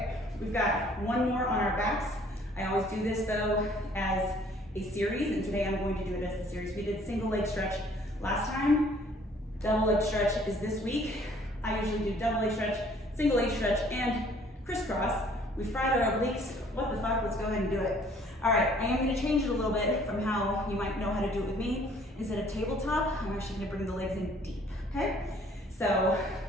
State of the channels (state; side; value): normal; both; correlation 0.58